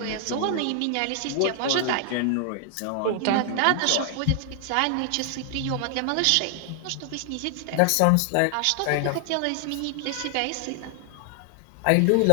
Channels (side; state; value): both; different; correlation 0.00